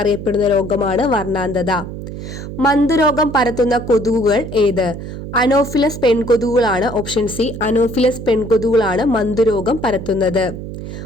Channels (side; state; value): right; noise; hum, 9 dB below the sound